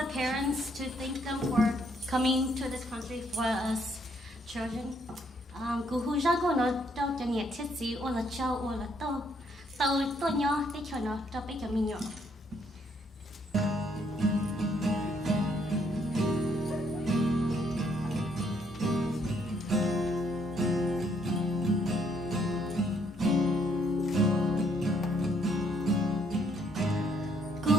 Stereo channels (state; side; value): normal; both; correlation 0.69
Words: parents to thank them for coming to this country for us children. Cú hu ra cô nó đâu cho nhiệt thiết gì ô là châu ô là tô tô tô nhỏ để cho nó cho bé cho mình nhỏ.